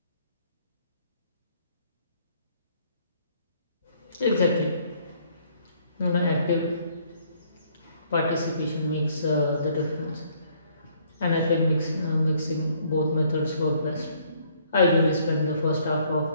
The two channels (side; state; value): both; inverted; correlation -0.64